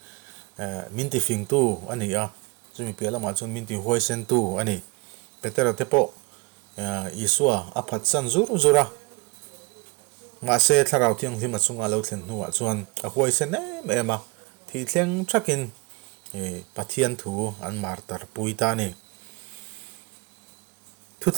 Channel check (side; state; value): left; quieter; 27.4 dB